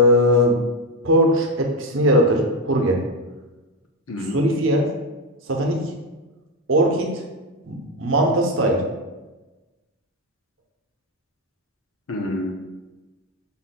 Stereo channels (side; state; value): both; normal; correlation 0.09